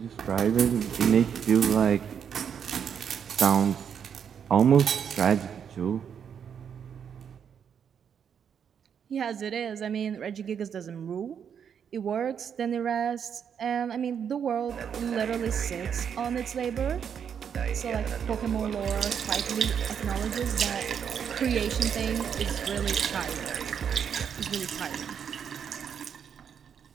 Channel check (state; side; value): quieter; left; 7.7 dB